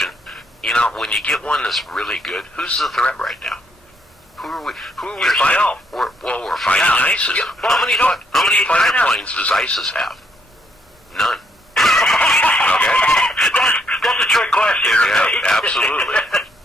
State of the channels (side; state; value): both; normal; correlation 0.73